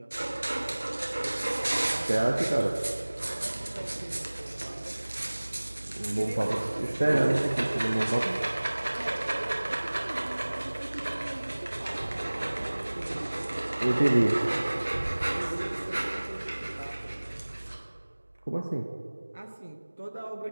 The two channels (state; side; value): inverted; both; correlation -1.00